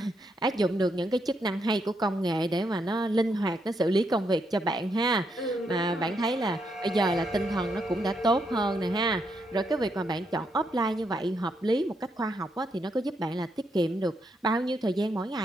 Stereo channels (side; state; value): both; normal; correlation 0.78